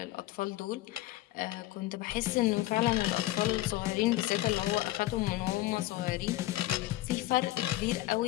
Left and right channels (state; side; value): quieter; right; 16.4 dB